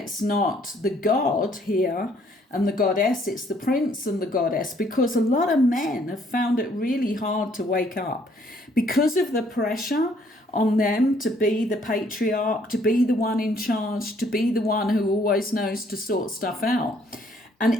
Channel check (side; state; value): both; normal; correlation 0.64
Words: not the God here and the Goddess, it's the Prince and the Goddess, because a lot of men have found it really hard to wake up because of the pressure on them to be the patriarch, to be the one in charge, to be the one who always knows to sort stuff out.